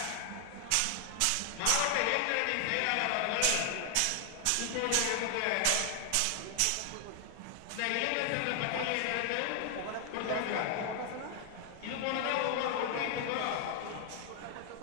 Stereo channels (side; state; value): both; different; correlation 0.00